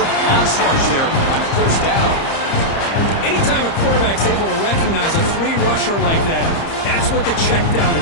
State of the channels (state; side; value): late; right; 30 ms